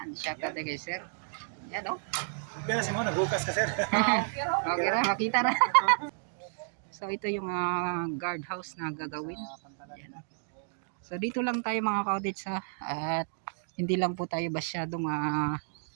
shout out kay sir. Yan oh. Pero si mo, naghukas ka sir. Okay ra, makita ra. So ito yung guard house na gagawin. Yan. So dito lang tayo mga ka-cottage at hindi lang po tayo masyadong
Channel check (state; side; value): silent; left; digital silence